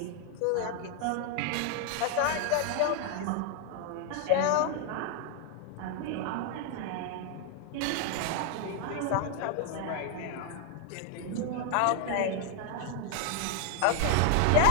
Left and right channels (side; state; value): both; different; correlation 0.00